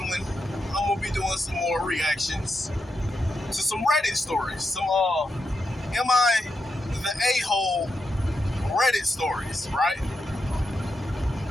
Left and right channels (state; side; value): normal; both; correlation 0.85